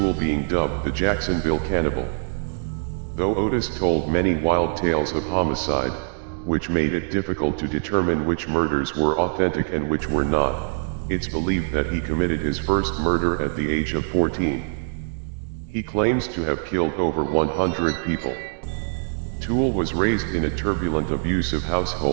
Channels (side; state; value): left; silent; digital silence